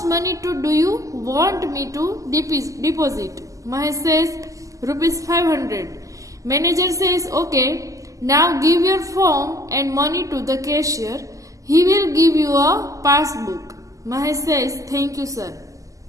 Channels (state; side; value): late; left; 0.16 ms